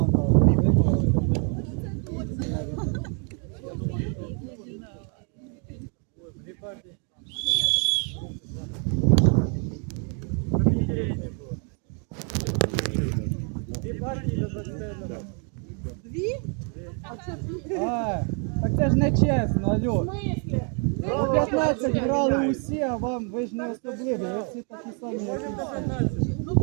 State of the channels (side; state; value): left; quieter; 39.5 dB